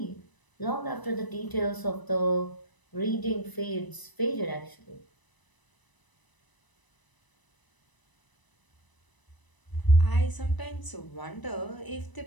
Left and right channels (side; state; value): right; late; 1.0 ms